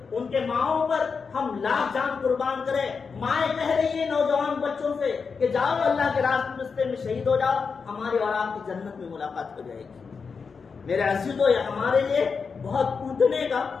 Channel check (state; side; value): quieter; right; 5.4 dB